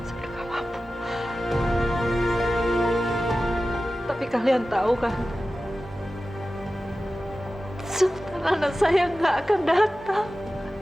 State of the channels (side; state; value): both; normal; correlation 0.95